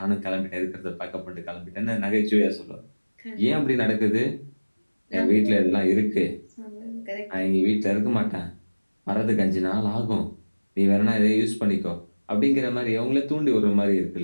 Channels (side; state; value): both; inverted; correlation -1.00